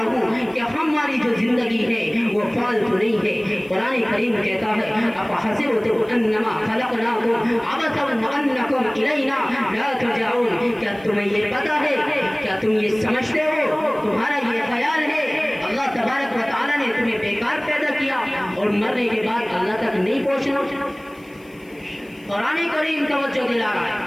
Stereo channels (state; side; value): noise; left; hiss, 30 dB below the sound